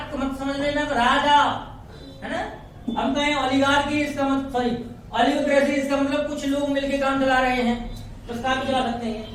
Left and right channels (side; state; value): both; identical; correlation 1.00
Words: मत समझ लेना, राजा, है ना। हम कहें ओलिगार्की, इसका मतलब सॉरी ओलिगोक्रेसी, इसका मतलब कुछ लोग मिलकर काम चला रहे हैं, बस काम चला सकते हैं।